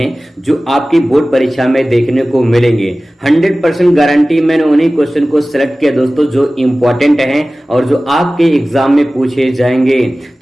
जो आपकी बोर्ड परीक्षा में देखने को मिलेंगे। 100% गारंटी मैंने उन्हीं क्वेश्चन को सिलेक्ट किया दोस्तों जो इंपॉर्टेंट हैं और जो आपके एग्जाम में पूछे जाएंगे।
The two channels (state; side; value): normal; both; correlation 0.97